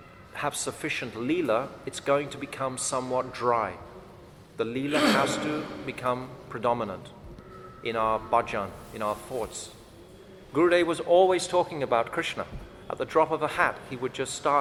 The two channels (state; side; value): identical; both; correlation 1.00